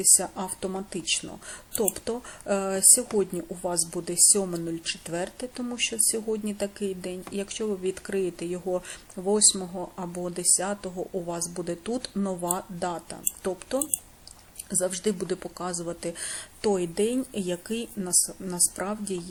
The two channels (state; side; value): identical; both; correlation 1.00